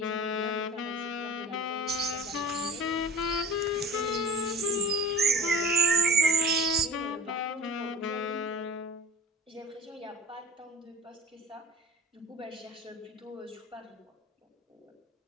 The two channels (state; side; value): normal; both; correlation 0.37